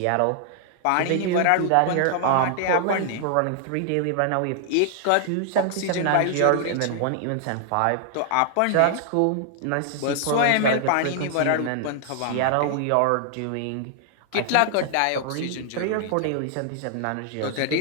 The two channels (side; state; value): both; different; correlation 0.00